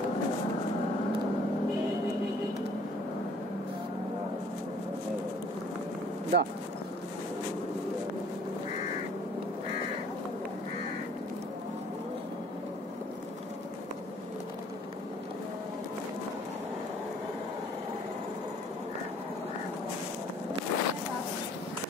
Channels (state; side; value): normal; both; correlation 0.57